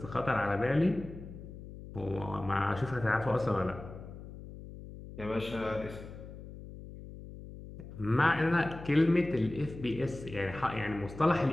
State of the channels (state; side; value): noise; left; hum, 13 dB below the sound